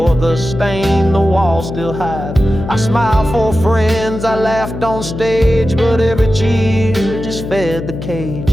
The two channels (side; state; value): left; noise; hum, 8 dB below the sound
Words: the stain the walls still hide. I smiled for friends, I laughed on stage, but every cheer just fed the